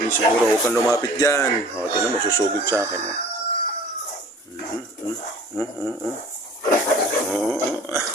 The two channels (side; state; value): both; normal; correlation 0.47